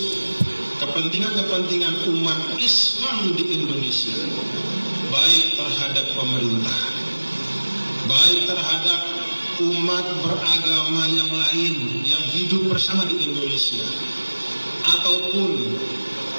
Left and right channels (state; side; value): inverted; both; correlation -1.00